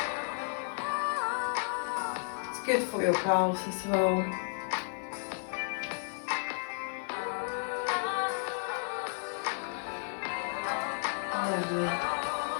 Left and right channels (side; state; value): right; silent; 56 dB below the other